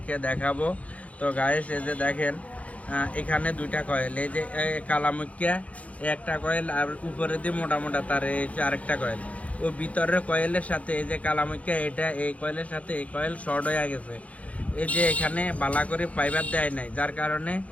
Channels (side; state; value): right; late; 0.066 ms